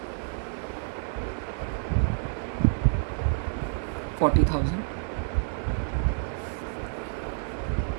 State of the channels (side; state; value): left; silent; 59 dB below the other